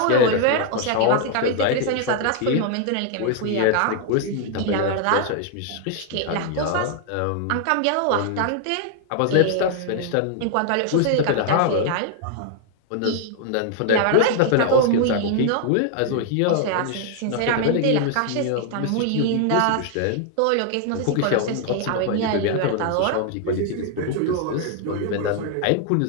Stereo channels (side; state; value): both; different; correlation 0.00